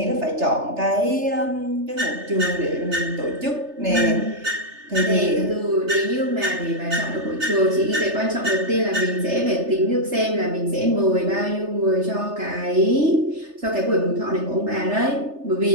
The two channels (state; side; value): late; left; 3.3 ms